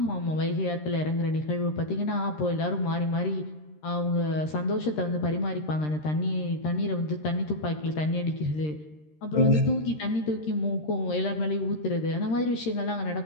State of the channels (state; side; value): late; right; 13 ms